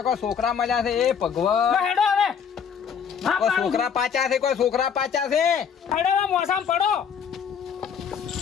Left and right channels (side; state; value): right; quieter; 7.3 dB